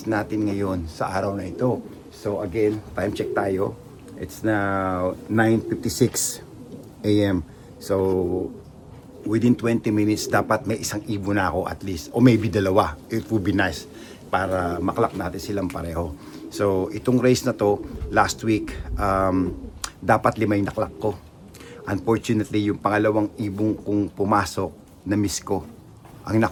natin ngayon sa araw na ito. So, again, time check tayo. It's now 9:56 AM. So, within 20 minutes, dapat may isang ibon na ako at least. O maybe dalawa. It would be nice para maklak natin silang pareho. So, itong race na to, last week, dapat 5 yung naklak ko. Unfortunately, yung pangalawang ibong kong pumasok, na-miss ko. Ang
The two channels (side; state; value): both; identical; correlation 1.00